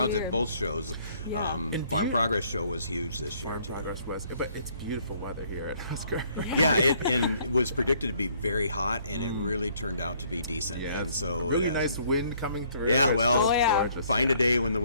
at both shows. Farm Progress show was huge this year too. Farm Progress was, but it's beautiful weather here at Husker. Yeah, it was predicted to be very hot, and it really turned out to be decent. Yeah, and so really nice wind coming through. Yeah, well, gorgeous. Find a day when the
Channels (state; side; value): inverted; both; correlation -0.64